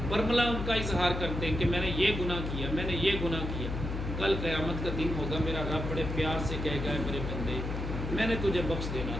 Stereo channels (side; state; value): left; noise; hum, 4 dB below the sound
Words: برملا ان کا اظہار کرتے ہیں کہ میں نے یہ گناہ کیا، میں نے یہ گناہ کیا، کل قیامت کا دن ہوگا میرا رب بڑے پیار سے کہے گا میرے بندے میں نے تجھے بخش دینا